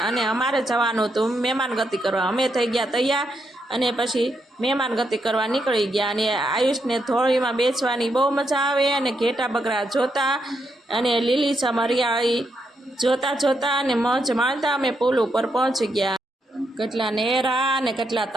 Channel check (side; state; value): both; normal; correlation 0.80